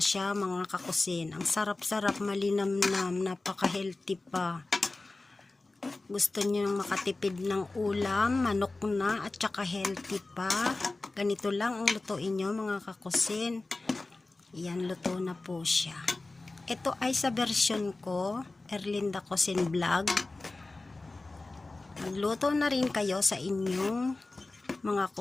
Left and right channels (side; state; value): right; quieter; 3.2 dB